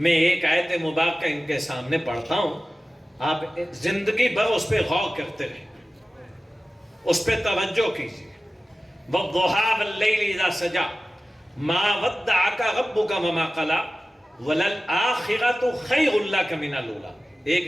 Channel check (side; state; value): both; normal; correlation 0.96